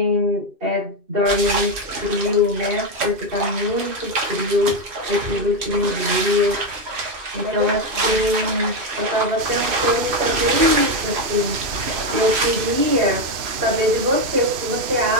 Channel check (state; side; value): late; left; 2.6 ms